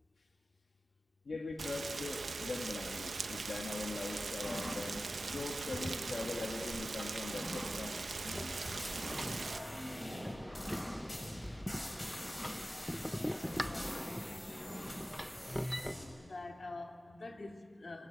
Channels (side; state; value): both; normal; correlation 0.95